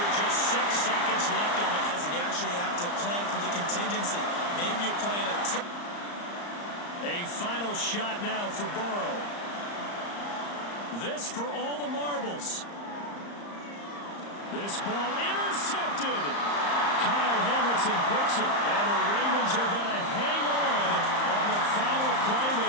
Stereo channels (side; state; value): right; late; 34 ms